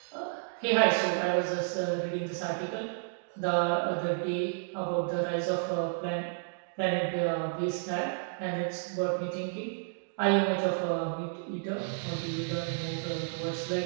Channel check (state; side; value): silent; left; digital silence